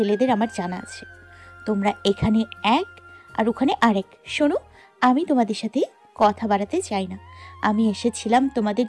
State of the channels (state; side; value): identical; both; correlation 1.00